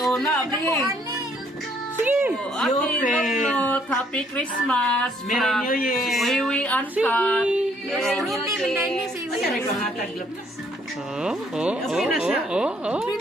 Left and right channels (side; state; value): both; normal; correlation 0.66